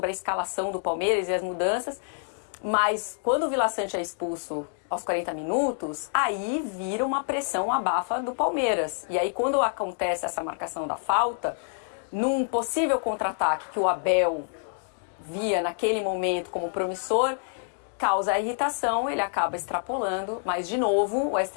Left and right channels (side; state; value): right; silent; digital silence